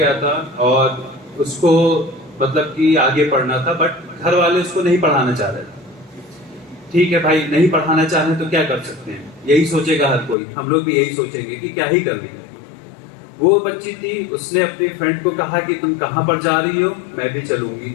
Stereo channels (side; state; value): right; drops out; at 10.4 s